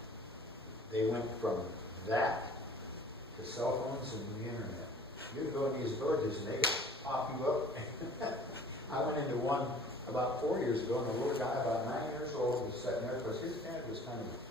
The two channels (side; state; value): both; normal; correlation 0.49